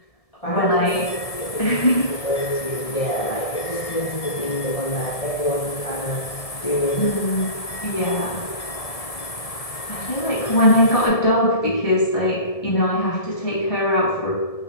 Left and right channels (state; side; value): late; right; 1.7 ms